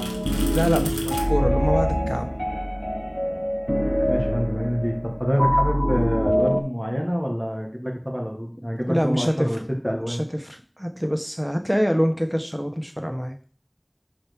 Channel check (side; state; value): both; identical; correlation 1.00